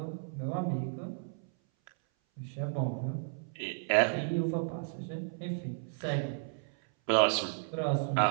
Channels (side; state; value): left; silent; 56 dB below the other